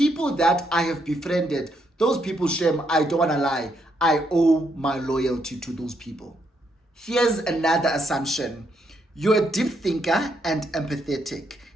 that I have befriended, those people, Shem, I don't want to lie, I owe my loyalty to those people. Here's another assumption. You're a deep thinker and empathetic,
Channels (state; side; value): normal; both; correlation 0.76